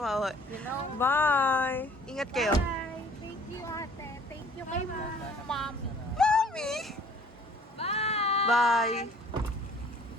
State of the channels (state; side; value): normal; both; correlation 0.55